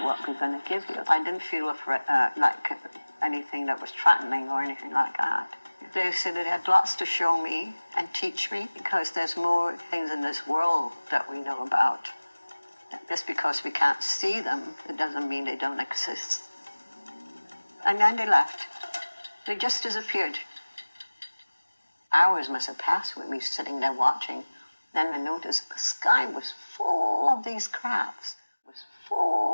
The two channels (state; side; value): inverted; both; correlation -1.00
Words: what we're going to give you. I didn't feel like anything that was threatening or anything like that. They said that they had lots to show me and teach me, because there's more things in this world that we know about. Just because we can't see them, it doesn't mean they don't exist. And then they left. They just disappeared. Hours must have passed with me sitting there watching. Then I noticed the sky was full of these crabs. It was